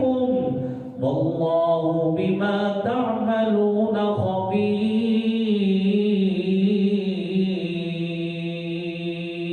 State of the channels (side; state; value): both; identical; correlation 1.00